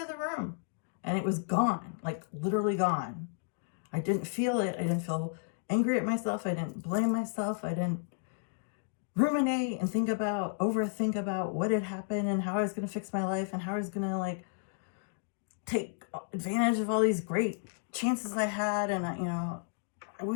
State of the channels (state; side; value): silent; right; digital silence